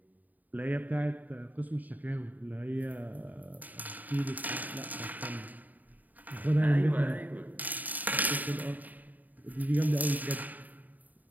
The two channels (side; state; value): left; late; 0.082 ms